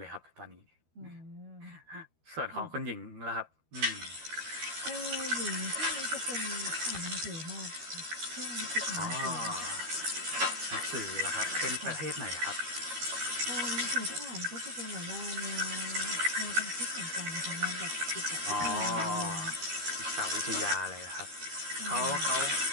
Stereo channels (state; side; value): late; left; 13 ms